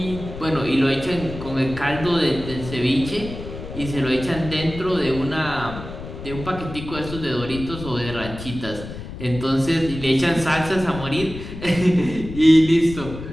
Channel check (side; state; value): left; noise; rumble, 11 dB below the sound